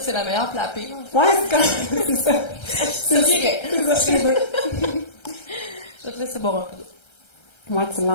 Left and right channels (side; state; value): right; late; 1.3 ms